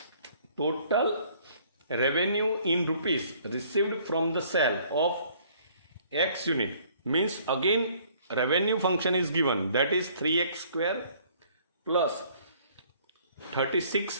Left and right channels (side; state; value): both; inverted; correlation -0.59